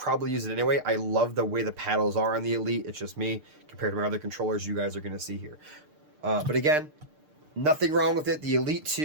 use it anyway. I love the way the paddles are on the Elite. It's just me compared to my other controllers you guys are going to see here. But again, nothing wrong with it. The Elite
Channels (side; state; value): left; late; 6.7 ms